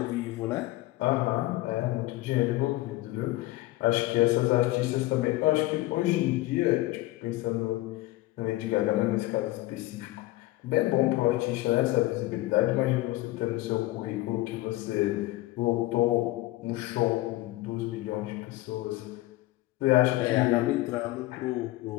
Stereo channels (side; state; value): right; quieter; 18.2 dB